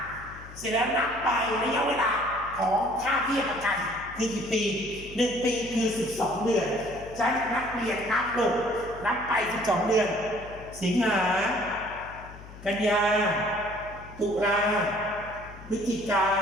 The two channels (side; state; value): left; noise; hum, 17 dB below the sound